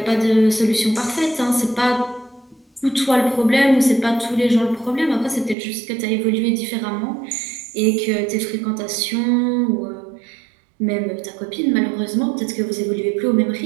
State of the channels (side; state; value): left; drops out; at 5.6 s